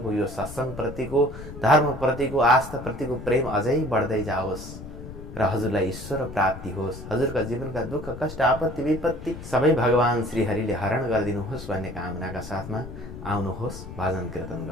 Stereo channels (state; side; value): noise; left; rumble, 12 dB below the sound